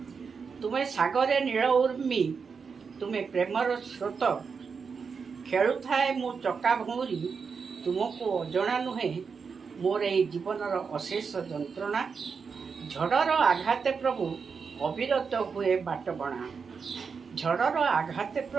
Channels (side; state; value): left; quieter; 5.6 dB